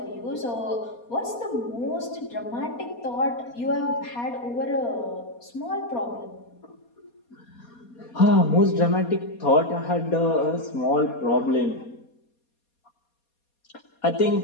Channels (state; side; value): late; right; 4.2 ms